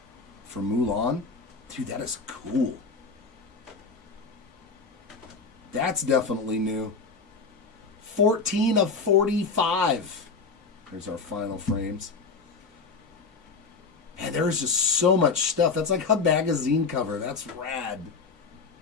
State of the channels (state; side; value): quieter; right; 4.5 dB